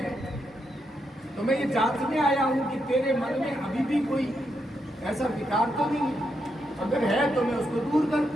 तो मैं ये जांचने आया हूं कि तेरे मन में अभी भी कोई ऐसा विकार तो नहीं है, अगर है तो मैं उसको दूर कर।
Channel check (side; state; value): both; normal; correlation 0.82